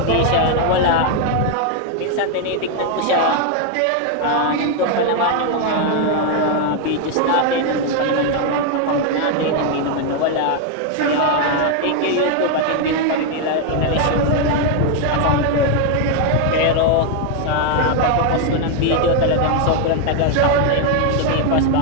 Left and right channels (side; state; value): both; different; correlation 0.01